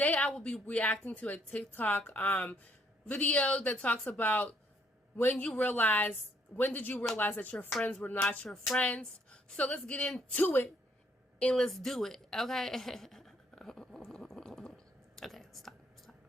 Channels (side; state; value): both; normal; correlation 0.68